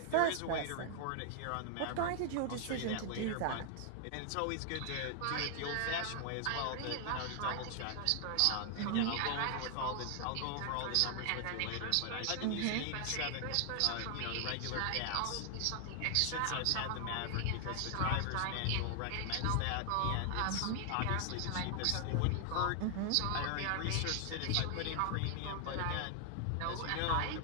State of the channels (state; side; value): different; both; correlation 0.00